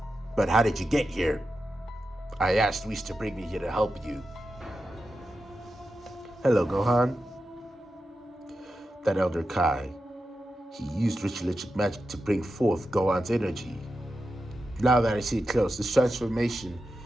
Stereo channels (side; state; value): both; normal; correlation 0.90